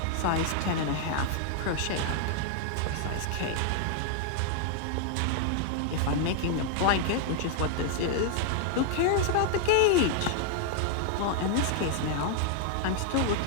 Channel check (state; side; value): different; both; correlation 0.00